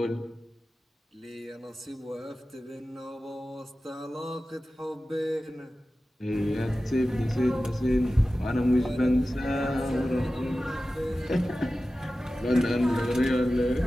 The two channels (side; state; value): both; normal; correlation 0.95